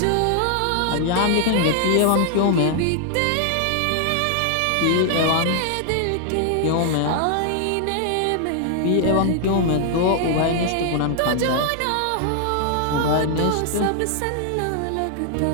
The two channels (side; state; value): both; different; correlation 0.00